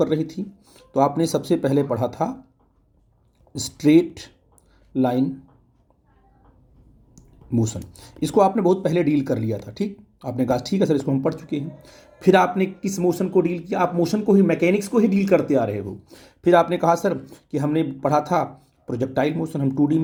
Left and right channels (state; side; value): identical; both; correlation 1.00